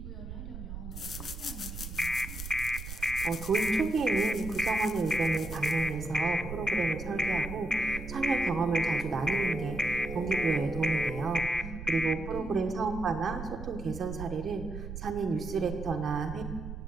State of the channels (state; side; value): noise; right; rumble, 9 dB below the sound